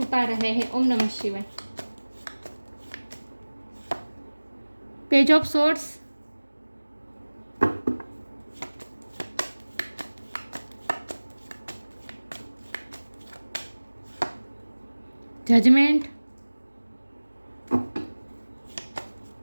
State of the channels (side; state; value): both; inverted; correlation -1.00